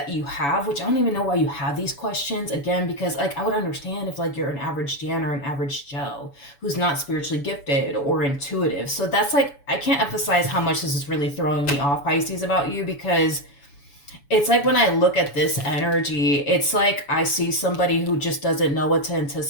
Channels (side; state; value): right; late; 7.1 ms